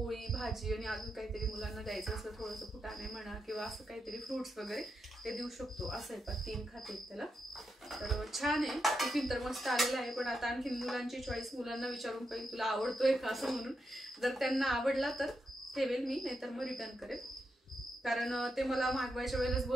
भाजी आणि अजून काहीतरी मुलांना द्यायचं असं थोडंसं फुटाणे म्हणा किंवा असं काहीतरी फ्रुट्स वगैरे ते देऊ शकतो. असं आहे पा 3 खाते आहेत त्याला. तर छान आहे टिफिन तर मस्त आलेला आहे. पण आता आणखी मुलांची चॉईस, मुलांना विचारून पाहिजे तुला आवडतोय का असं म्हणून. जर त्यांना आवडला तर ठेवेल मी, नाहीतर मग रिटर्न करेल. कारण ते मला मागवायच्या वेळेलाच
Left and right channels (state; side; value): normal; both; correlation 0.85